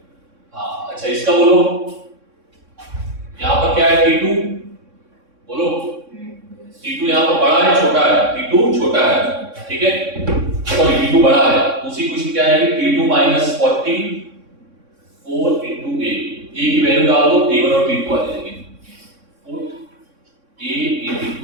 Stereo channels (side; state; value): left; late; 3.6 ms